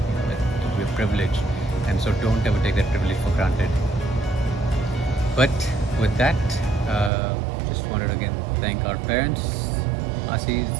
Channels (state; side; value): drops out; left; at 7.1 s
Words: we're privileged, and so don't ever take that privilege for granted. But with that, just wanted to again thank our parents, Asis.